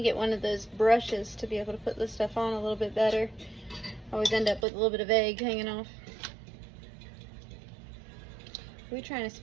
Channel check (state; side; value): drops out; left; at 4.7 s